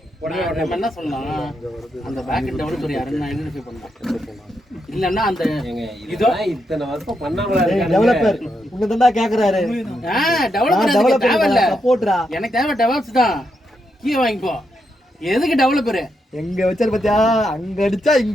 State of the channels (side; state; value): both; normal; correlation 0.82